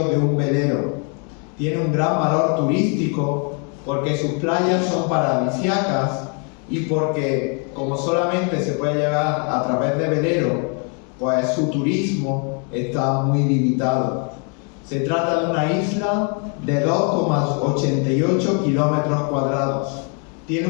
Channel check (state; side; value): quieter; right; 38.6 dB